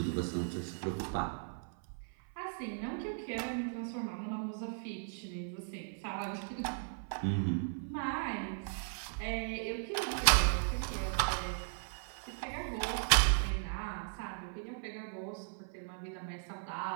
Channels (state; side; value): silent; left; 53 dB below the other